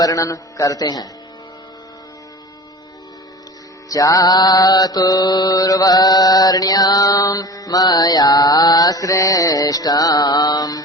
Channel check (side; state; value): both; normal; correlation 0.37